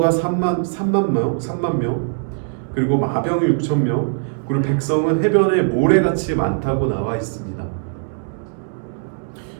3만 명, 그리고 마병이 6천 명, 그리고 백성은 해변에 모래같이 많다고 나와 있습니다.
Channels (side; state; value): left; silent; 66 dB below the other